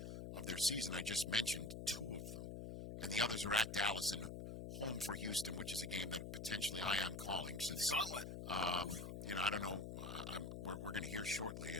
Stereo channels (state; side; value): noise; left; hum, 7 dB below the sound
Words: of their season, I just mentioned 2 of them. And the others are at Dallas and home for Houston, which is a game that potentially I am calling. Since it's a gauntlet. I don't know. We're going to hear shortly